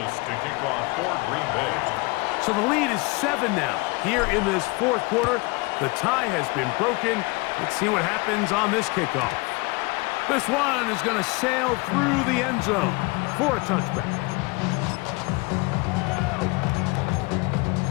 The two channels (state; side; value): quieter; right; 26.3 dB